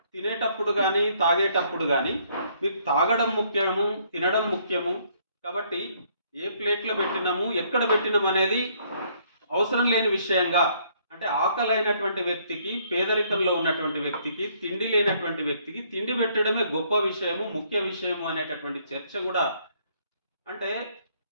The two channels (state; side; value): inverted; both; correlation -0.66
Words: తినేటప్పుడు కానీ తాగేటప్పుడు కానీ మీకు తాగడం ముఖ్యము, తినడం ముఖ్యము, కాబట్టి ఏ ప్లేట్లో పెట్టినాము, ఎక్కడ పెట్టినాము అనేది అవసరం లేని విషయంగా, అంటే ఆకలి అయినటువంటి వ్యక్తికి, పేదరికంలో ఉన్నటువంటి వ్యక్తికి, తిండి లేనటువంటి వ్యక్తికి తిండి పెట్టడమే గొప్ప విషయము, ముఖ్య విషయము అనేటటువంటి చర్చ కూడా. అంటే